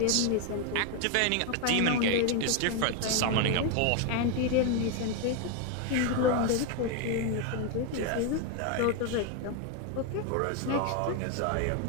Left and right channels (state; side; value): different; both; correlation 0.01